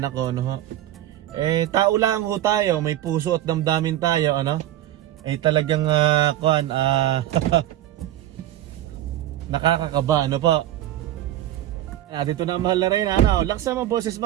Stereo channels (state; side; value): quieter; left; 13.3 dB